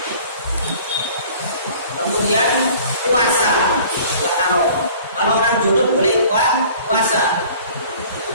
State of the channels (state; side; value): inverted; both; correlation -0.49